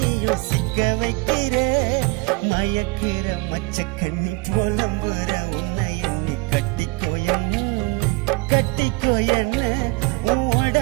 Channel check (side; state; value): left; quieter; 24.7 dB